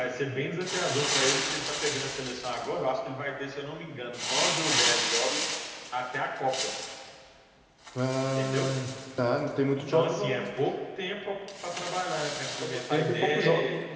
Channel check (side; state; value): both; identical; correlation 1.00